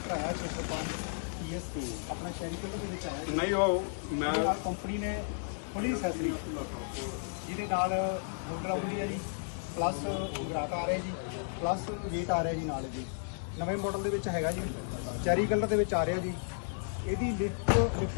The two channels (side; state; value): right; silent; digital silence